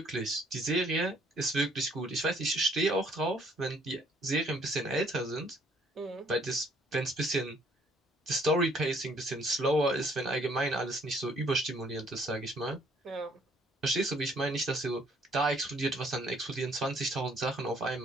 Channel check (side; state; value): both; normal; correlation 0.63